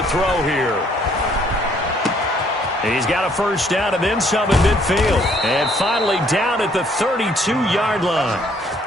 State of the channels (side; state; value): both; normal; correlation 0.64